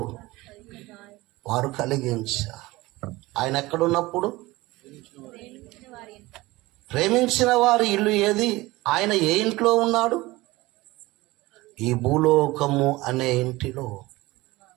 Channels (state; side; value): quieter; left; 20.0 dB